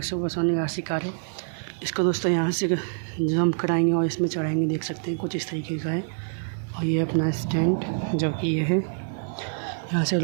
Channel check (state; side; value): silent; left; 59 dB below the other